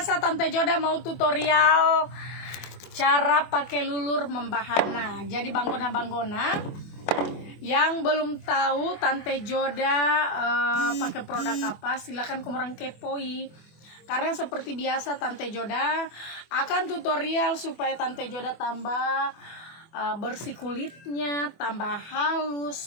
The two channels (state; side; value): late; right; 24 ms